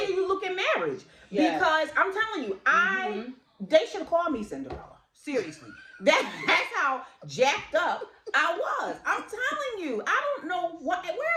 you look at marriage. Yes. Because I'm telling you, they should have called me Cinderella. Seriously. That's how jacked up I was. I'm telling you. I don't know where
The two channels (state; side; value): identical; both; correlation 1.00